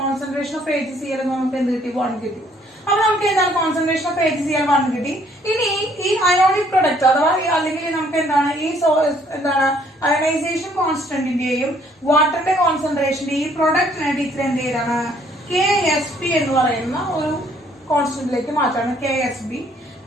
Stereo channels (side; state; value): both; normal; correlation 0.64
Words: കോൺസെൻട്രേഷൻ ഓഫ് AgCl നമുക്ക് എന്ത് കിട്ടി? 1 കിട്ടി. അപ്പൊ നമുക്ക് എന്താണ് കോൺസെൻട്രേഷൻ ഓഫ് AgCl 1 കിട്ടി. ഇനി ഈ അയോണിക് പ്രൊഡക്റ്റ് അഥവാ അല്ലെങ്കിൽ നമുക്ക് എന്താണ് ഈ എന്താണ് അയണൈസേഷൻ കോൺസ്റ്റന്റിന്റെയും വാട്ടറിന്റെ കോൺസെൻട്രേഷന്റെ ഈ പ്രൊഡക്റ്റിനെ ടീച്ചർ എന്ത് ചെയ്താണ് KSP എന്ന് പറയുന്ന ഒരു കോൺസ്റ്റന്റിലേക്ക് മാറ്റാണ്. KSB